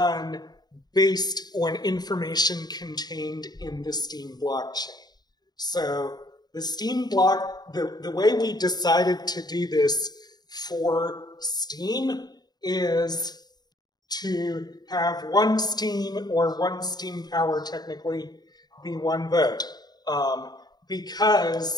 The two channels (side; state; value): right; late; 0.20 ms